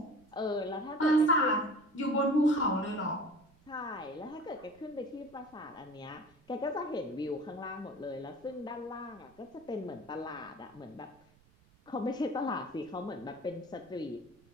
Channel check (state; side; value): noise; right; rumble, 29 dB below the sound